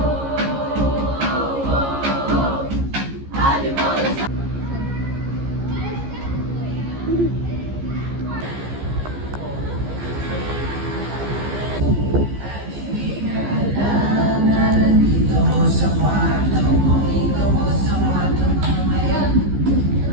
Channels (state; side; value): late; left; 15 ms